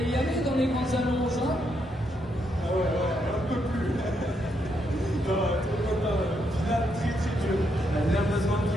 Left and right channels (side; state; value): both; normal; correlation 0.78